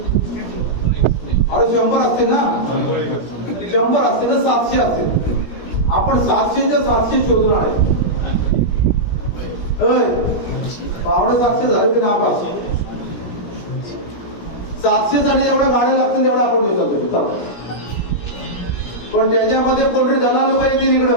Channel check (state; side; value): late; right; 17 ms